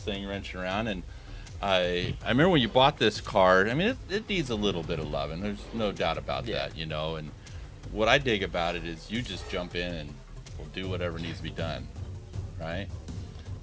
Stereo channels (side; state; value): both; identical; correlation 1.00